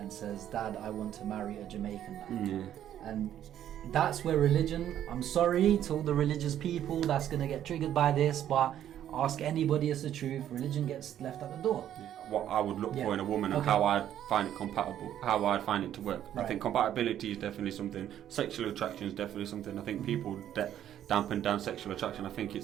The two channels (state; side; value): quieter; left; 11.0 dB